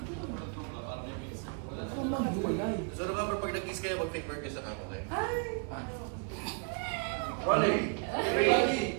So remember, pag nag-kiss kayo, mag-fake birthday sa akin, okay? Ay! Rolling!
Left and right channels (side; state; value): left; quieter; 38.0 dB